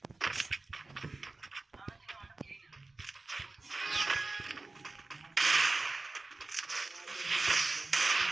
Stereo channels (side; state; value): left; quieter; 3.3 dB